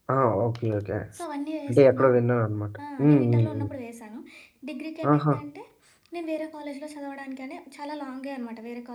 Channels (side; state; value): both; identical; correlation 1.00